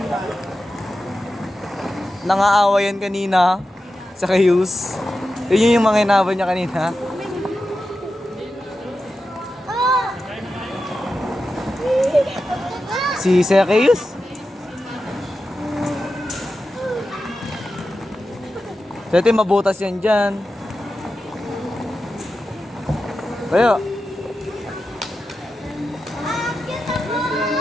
Nangaawa yan kanina sa Kayus. Yun yung mga inaabot niya kanina. Si Zacchaeus. Dati mabutas yan dyan. Tayo.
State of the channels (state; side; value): normal; both; correlation 0.91